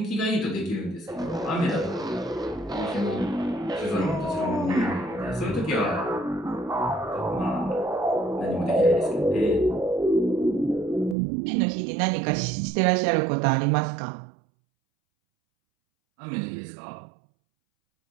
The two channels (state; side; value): drops out; left; at 11.2 s